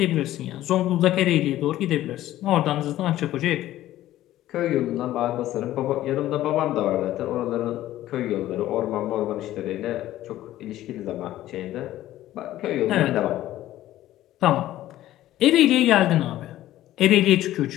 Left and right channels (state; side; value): quieter; right; 14.2 dB